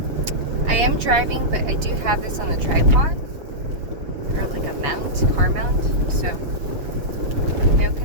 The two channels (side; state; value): left; late; 7.1 ms